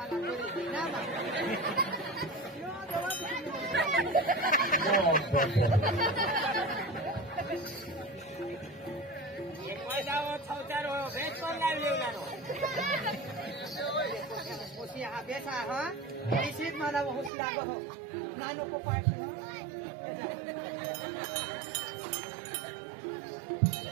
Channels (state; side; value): drops out; left; at 17.3 s